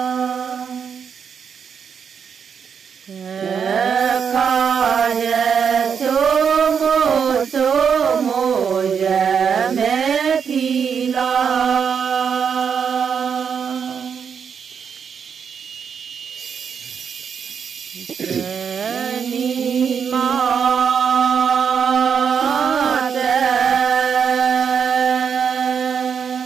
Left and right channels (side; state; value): left; quieter; 6.9 dB